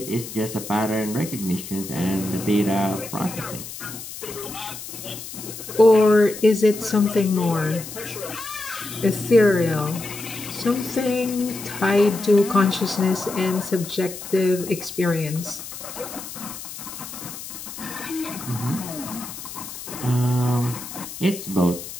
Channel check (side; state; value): left; noise; hiss, 11 dB below the sound